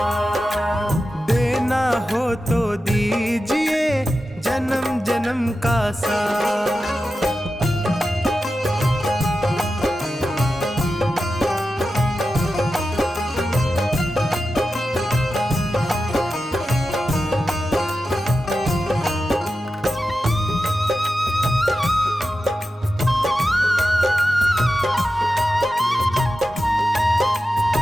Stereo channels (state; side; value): normal; both; correlation 0.92